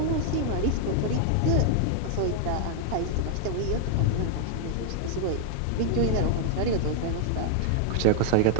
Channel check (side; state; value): both; different; correlation -0.01